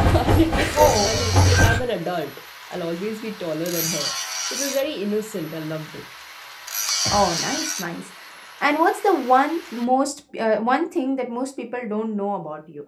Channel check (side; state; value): both; identical; correlation 1.00